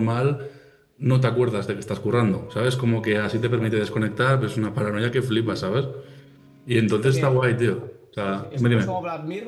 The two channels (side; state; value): both; identical; correlation 1.00